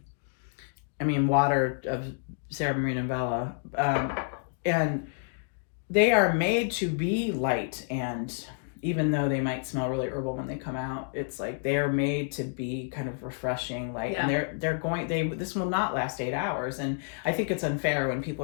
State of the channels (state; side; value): silent; right; digital silence